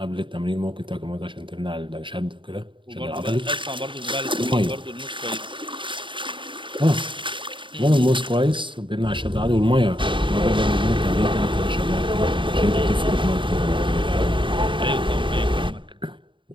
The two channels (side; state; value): left; late; 0.24 ms